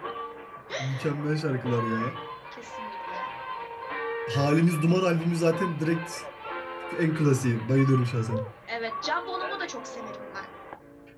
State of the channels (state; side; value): identical; both; correlation 1.00